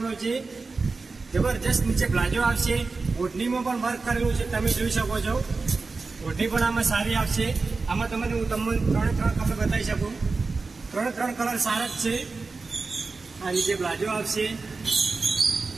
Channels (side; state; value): left; quieter; 4.0 dB